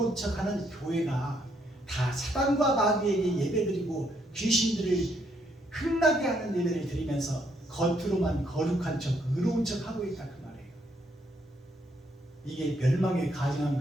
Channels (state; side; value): normal; both; correlation 0.73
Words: 척 하는 교회가 다 사탄과 마귀에게 예배드리고 귀신들을 흥나게 하는 예배를 드리면서 겉으로만 거룩한 척 의로운 척 하고 있다 그 말이에요. 이게 멸망에 가증한